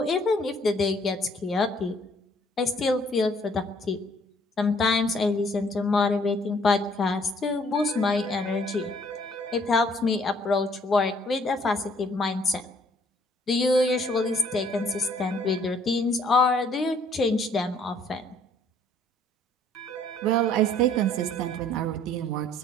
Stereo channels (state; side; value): normal; both; correlation 0.62